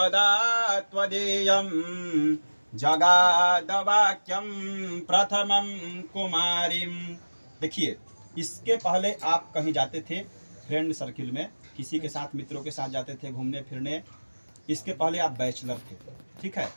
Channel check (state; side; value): inverted; both; correlation -1.00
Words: त्वदीयं जगादवाक्यं प्रथमं कुमारीं। देखिए, इसके पहले आप कहीं जाते थे फ्रेंड सर्किल में, किसी के साथ, मित्रों के साथ जाते थे घूमने फिरने। इसके पहले आप बैचलर थे, ठीक है।